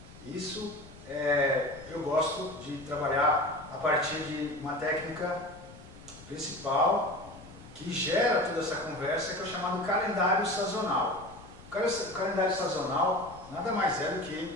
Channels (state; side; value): noise; left; rumble, 19 dB below the sound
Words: Isso eu gosto de trabalhar a partir de uma técnica principal que gera toda essa conversa, que é o chamado calendário sazonal. O calendário sazonal nada mais é do